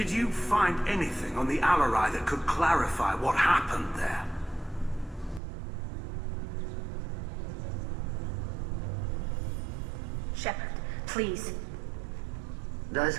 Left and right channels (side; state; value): left; drops out; at 5.4 s